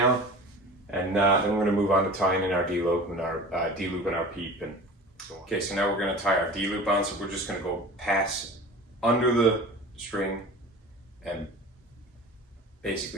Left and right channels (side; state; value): both; normal; correlation 0.38